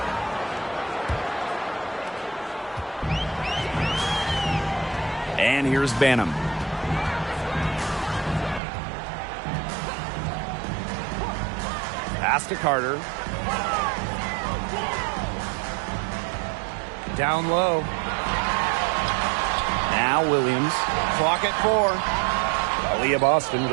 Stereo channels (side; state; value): left; drops out; at 8.6 s